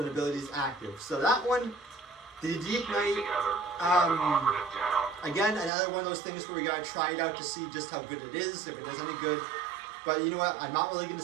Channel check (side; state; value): left; drops out; at 5.7 s